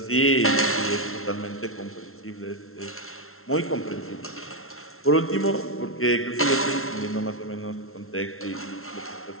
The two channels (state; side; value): late; right; 0.62 ms